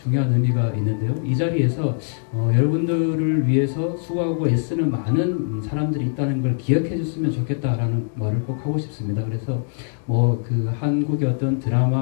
의미가 있는데요. 이 자리에서 여러분들을 위해서 수고하고 애쓰는 많은 사람들이 있다는 걸 기억해 줬으면 좋겠다라는 말을 꼭 하고 싶습니다. 그래서 한국의 어떤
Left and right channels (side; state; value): right; silent; digital silence